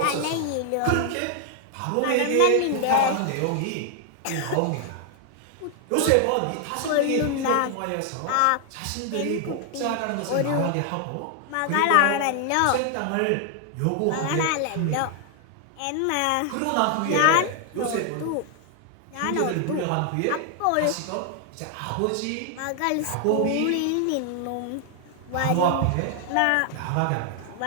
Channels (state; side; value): different; both; correlation 0.00